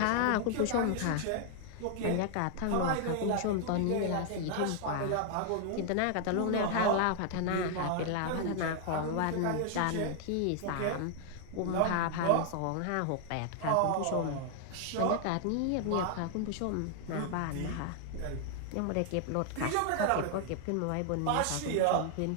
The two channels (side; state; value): both; different; correlation 0.00